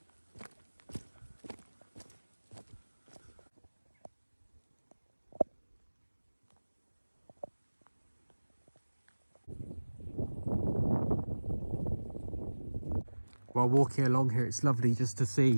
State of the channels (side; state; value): both; inverted; correlation -1.00